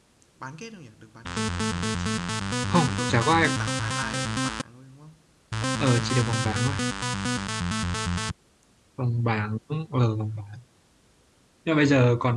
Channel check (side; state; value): both; identical; correlation 1.00